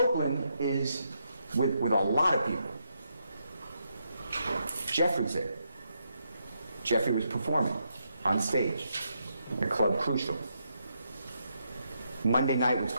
is with a lot of people. Jeffrey's there. Jeffrey was performing on stage at Club Crucial. Monday night was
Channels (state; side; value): inverted; both; correlation -0.80